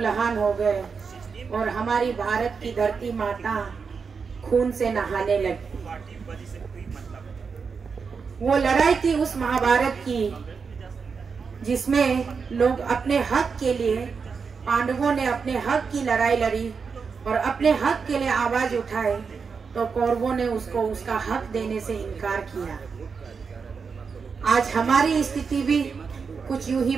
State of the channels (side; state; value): left; quieter; 5.5 dB